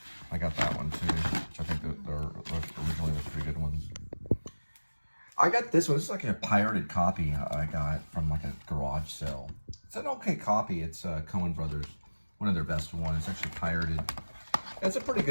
I got that one too, which I think that originally was pretty good ones. I got this one. This is like a pirated copy I got from like a garage sale. It's an okay copy. It's Coen Brothers, one of their best ones. It's actually pirated. It's a pretty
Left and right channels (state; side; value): inverted; both; correlation -1.00